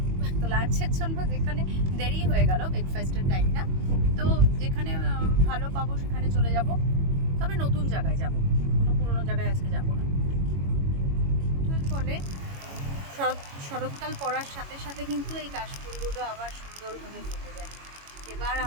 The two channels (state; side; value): late; left; 21 ms